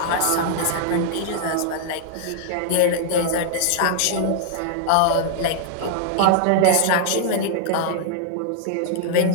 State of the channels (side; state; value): both; different; correlation -0.01